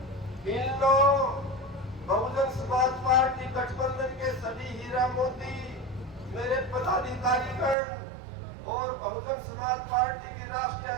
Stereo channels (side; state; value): left; drops out; at 7.8 s